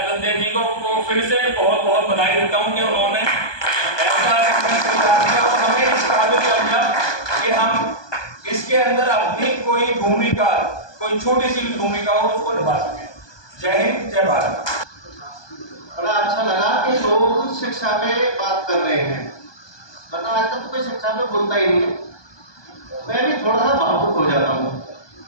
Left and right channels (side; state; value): right; late; 1.2 ms